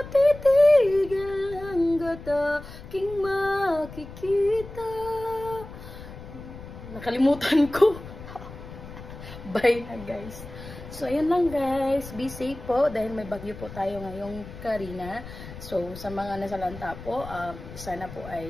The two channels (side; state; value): left; noise; rumble, 14 dB below the sound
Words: titigil hanggat aking makikita. Nakalimutan ko. Bye na, guys. So, ayan lang, guys. Be safe po dahil may bagyo po tayo ngayong Karina. So, sa mga nasalanta po, sana po